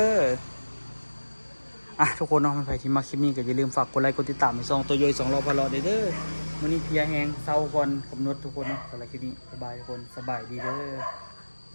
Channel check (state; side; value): inverted; both; correlation -1.00